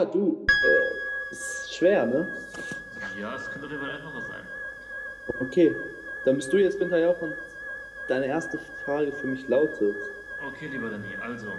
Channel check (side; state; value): both; identical; correlation 1.00